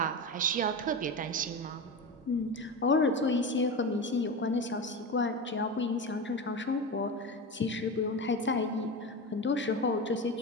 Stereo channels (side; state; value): both; normal; correlation 0.23